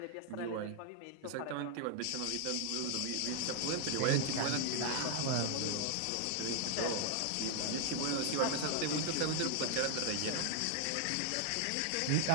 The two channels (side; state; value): both; different; correlation 0.00